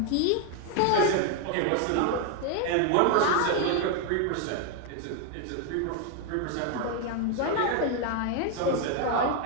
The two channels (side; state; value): both; different; correlation 0.01